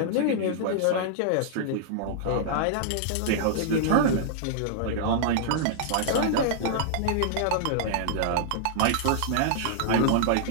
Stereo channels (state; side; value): different; both; correlation -0.01